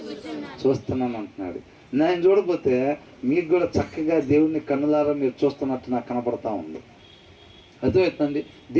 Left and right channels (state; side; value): identical; both; correlation 1.00